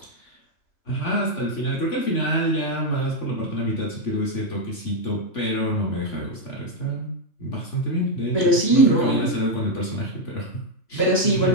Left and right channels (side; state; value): right; late; 3.5 ms